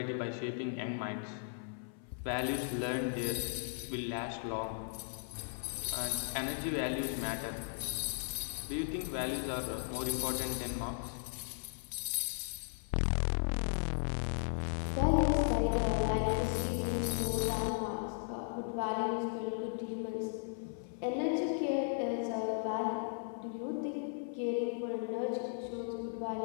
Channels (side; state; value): right; silent; 53 dB below the other